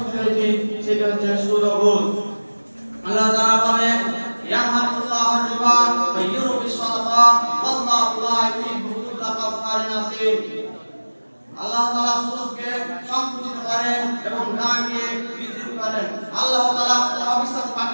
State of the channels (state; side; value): inverted; both; correlation -1.00